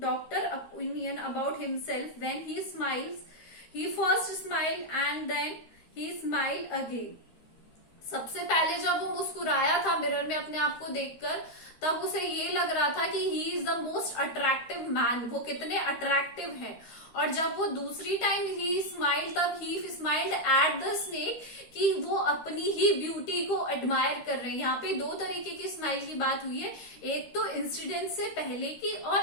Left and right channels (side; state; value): right; late; 13 ms